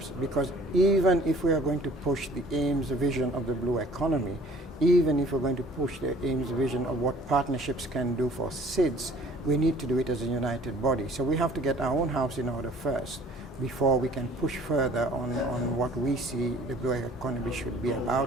because even if we are going to push the AIMS vision of the blue economy, even if we're going to push the AIMS vision of what partnerships can do for SIDS, we need to do it as a united body. So we have to get our own house in order first, before we can push further on what we see the blue economy should be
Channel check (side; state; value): both; normal; correlation 0.53